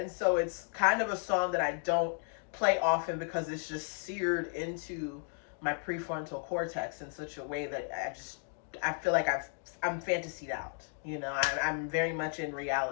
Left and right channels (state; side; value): silent; right; 55 dB below the other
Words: so it's kind of a song that I don't play often because it's just seared into my prefrontal cortex in such a way that I feel like I'm fantasied out. You know, I'm very much in